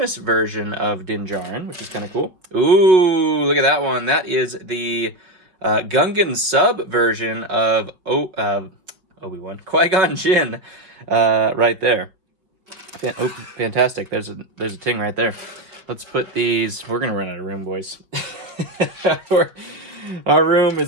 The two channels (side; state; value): left; late; 5.0 ms